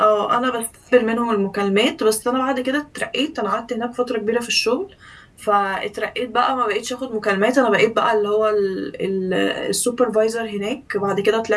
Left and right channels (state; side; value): identical; both; correlation 1.00